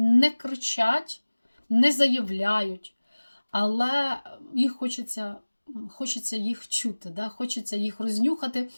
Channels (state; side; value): inverted; both; correlation -1.00